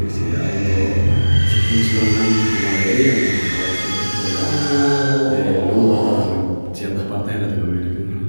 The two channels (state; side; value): inverted; both; correlation -1.00